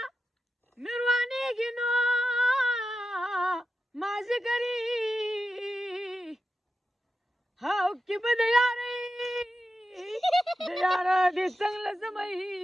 مې روانېږي نو مازدیګري هاو کې به د یارۍ د یاره دې څنګ له زمۍ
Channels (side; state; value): both; normal; correlation 0.90